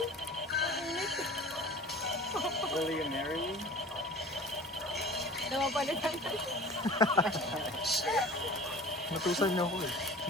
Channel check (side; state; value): both; normal; correlation 0.42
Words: Will you marry me? Namapalitan. Natusan niyo ako eh.